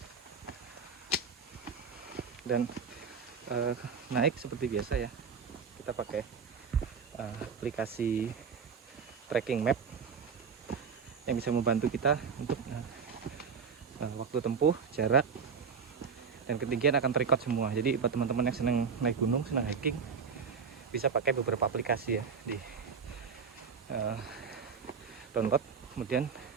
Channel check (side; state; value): left; quieter; 6.0 dB